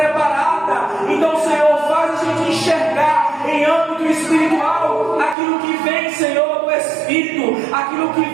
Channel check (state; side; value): drops out; left; at 5.4 s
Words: Então, Senhor, faz a gente enxergar em âmbito espiritual aquilo que vem, Senhor, do Espírito, aquilo que